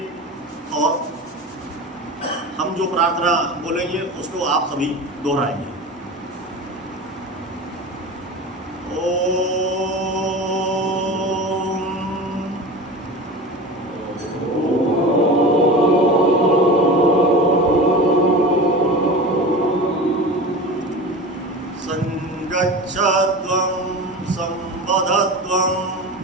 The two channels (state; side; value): normal; both; correlation 0.31